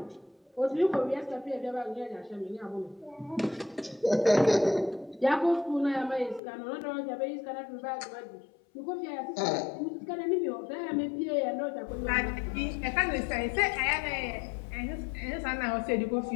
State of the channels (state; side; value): drops out; right; at 6.4 s